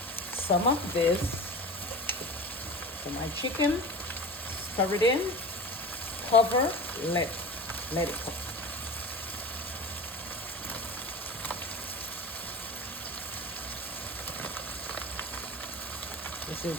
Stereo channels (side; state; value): both; normal; correlation 0.33